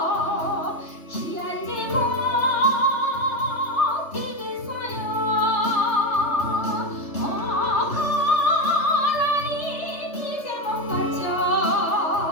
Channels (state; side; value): late; right; 3.3 ms